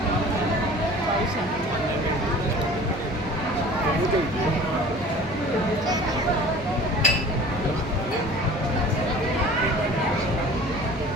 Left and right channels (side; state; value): right; noise; hum, 15 dB below the sound